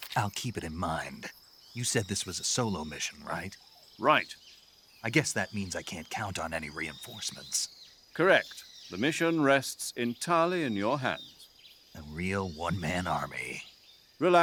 I'll keep it in mind. You said this was a solo mission, right? Right. I guess that means I can't count on any reinforcements. Correct. The mission rests entirely in your hands. A real one-man army.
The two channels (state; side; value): identical; both; correlation 1.00